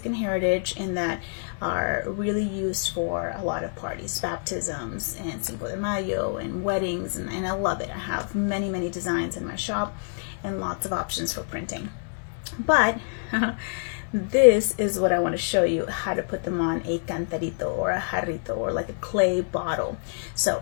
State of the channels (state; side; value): silent; right; 60 dB below the other